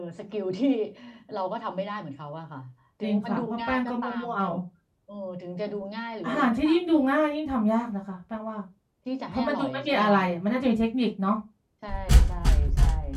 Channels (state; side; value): identical; both; correlation 1.00